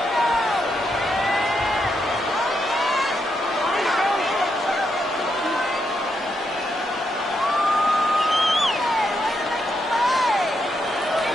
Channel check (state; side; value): normal; both; correlation 0.81